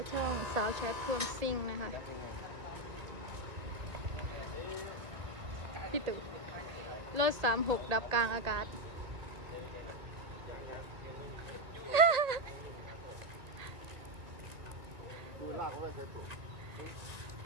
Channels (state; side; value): late; left; 2.1 ms